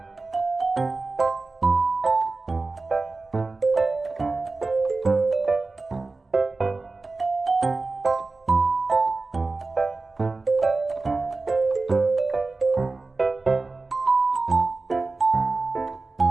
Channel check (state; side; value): quieter; left; 3.6 dB